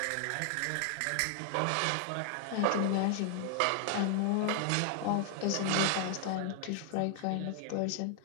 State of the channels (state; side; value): different; both; correlation 0.00